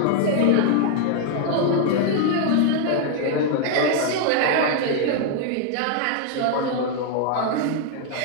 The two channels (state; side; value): different; both; correlation 0.00